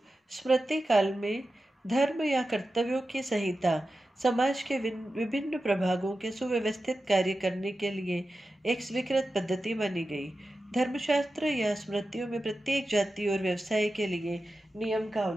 स्मृति काल में धर्म या कर्तव्यों की संहिता समाज के विभिन्न प्रभागों के सुव्यवस्थित कार्य करने के लिए एक स्वीकृत पद्धति मानी गई। धर्मशास्त्र या स्मृतियों में प्रत्येक जाति और व्यवसाय के लिए नियम का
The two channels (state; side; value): normal; both; correlation 0.92